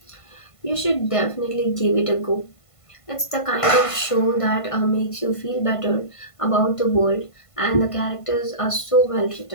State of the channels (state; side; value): late; right; 1.5 ms